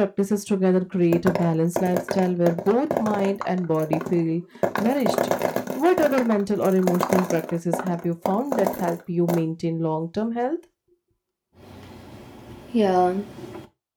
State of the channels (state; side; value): identical; both; correlation 1.00